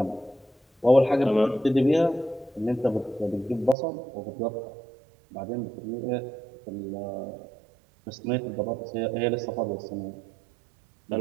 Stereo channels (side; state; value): left; drops out; at 3.8 s